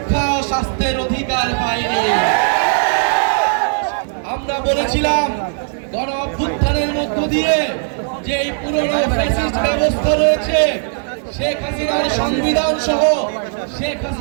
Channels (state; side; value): silent; left; digital silence